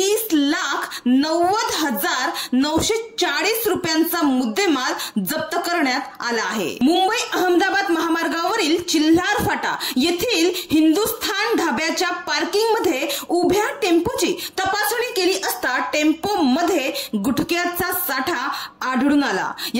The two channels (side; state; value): both; identical; correlation 1.00